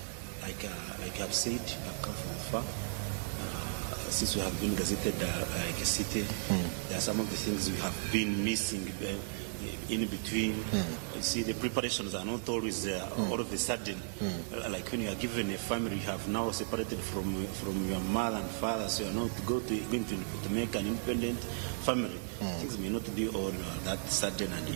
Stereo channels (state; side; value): silent; left; digital silence